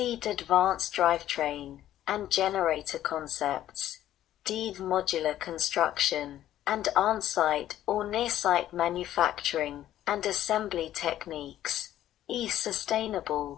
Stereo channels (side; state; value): right; quieter; 12.6 dB